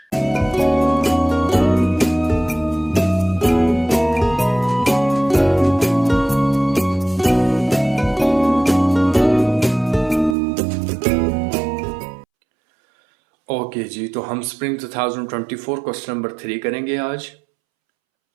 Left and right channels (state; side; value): drops out; left; at 10.4 s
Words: Okay ji, तो हम स्प्रिंग 2024 क्वेश्चन नंबर 3 करेंगे आज